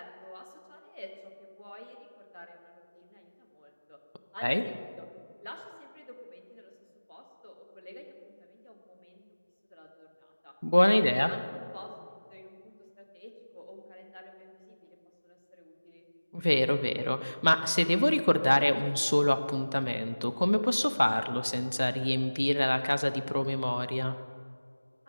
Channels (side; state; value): both; inverted; correlation -1.00